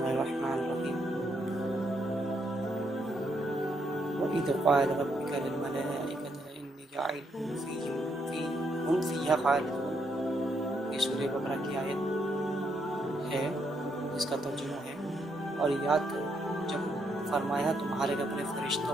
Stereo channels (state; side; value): normal; both; correlation 0.76